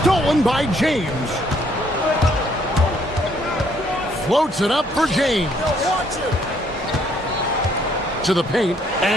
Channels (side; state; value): both; normal; correlation 0.67